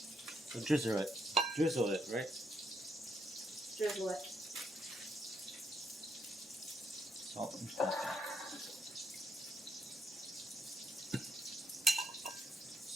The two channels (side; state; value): both; normal; correlation 0.76